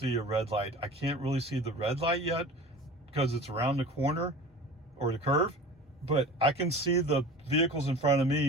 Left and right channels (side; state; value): both; normal; correlation 0.38